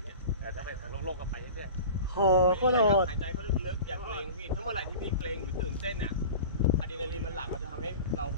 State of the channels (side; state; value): both; inverted; correlation -0.36